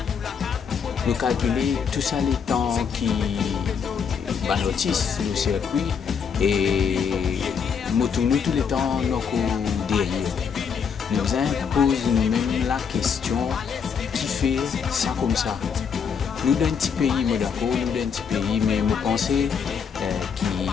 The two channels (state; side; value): quieter; right; 6.6 dB